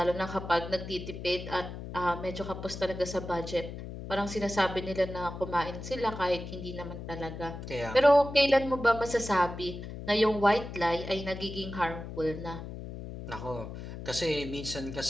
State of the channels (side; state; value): left; noise; hum, 9 dB below the sound